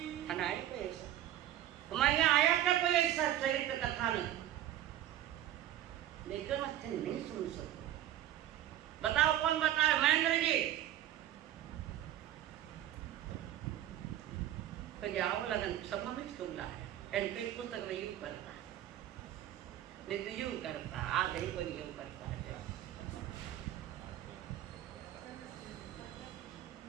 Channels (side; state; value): left; quieter; 12.5 dB